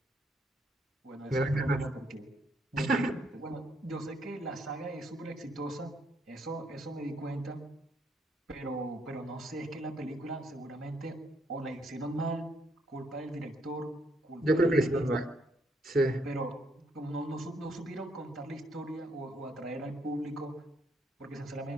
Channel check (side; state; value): both; normal; correlation 0.72